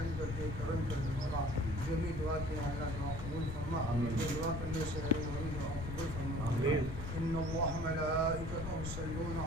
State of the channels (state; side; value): noise; left; rumble, 6 dB below the sound